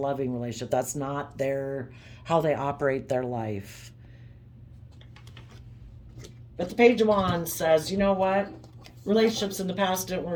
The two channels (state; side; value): identical; both; correlation 1.00